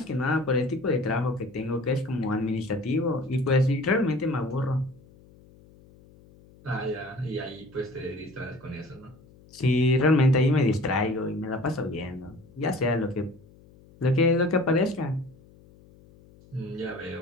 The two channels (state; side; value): noise; left; hum, 25 dB below the sound